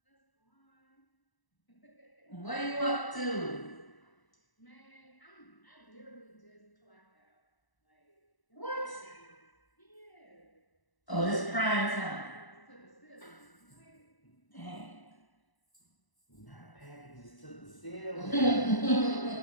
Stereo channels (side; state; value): right; late; 1.0 ms